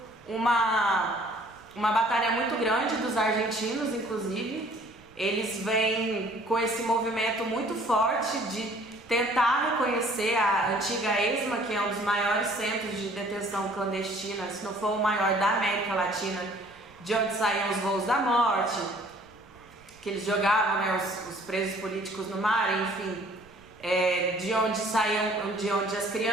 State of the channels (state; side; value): noise; right; rumble, 27 dB below the sound